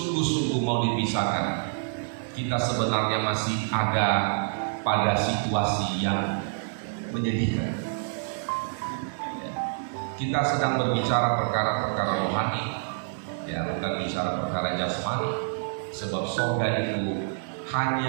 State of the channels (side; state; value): left; silent; digital silence